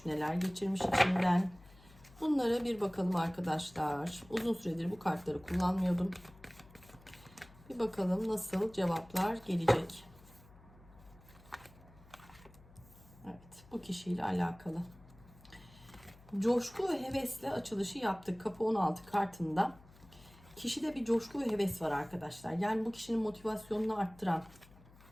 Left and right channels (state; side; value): noise; left; hum, 23 dB below the sound